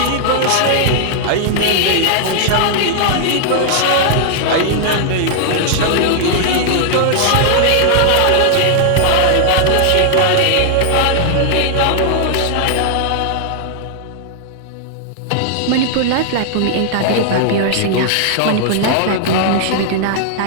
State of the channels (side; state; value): both; different; correlation -0.01